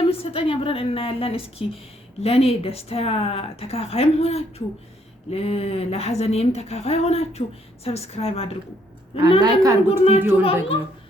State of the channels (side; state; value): both; normal; correlation 0.69